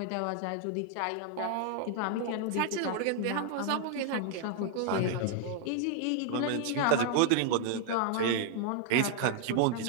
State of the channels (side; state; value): both; different; correlation 0.00